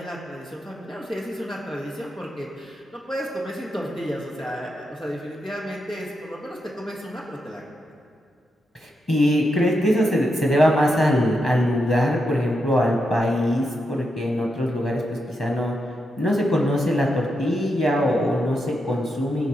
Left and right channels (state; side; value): normal; both; correlation 0.84